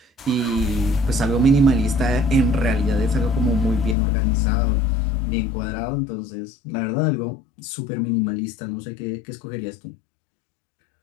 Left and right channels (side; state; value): right; drops out; at 4.0 s